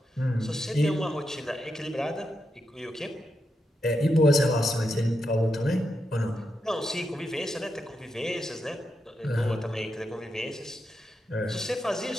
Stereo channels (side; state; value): both; normal; correlation 0.85